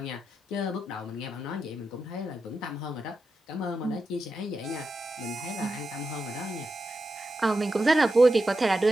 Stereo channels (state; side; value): normal; both; correlation 0.89